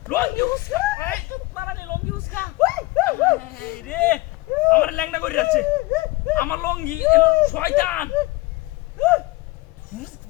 লঙ্গি উস্কা এই চুপ পারা নি লঙ্গি উস্কা হাই রে আমার ল্যাংড়া করে যাচ্ছে আমার লঙ্গি শয়তান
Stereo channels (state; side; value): quieter; right; 21.5 dB